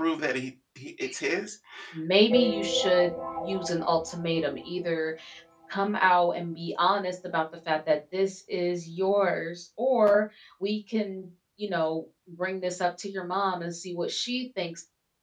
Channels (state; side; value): identical; both; correlation 1.00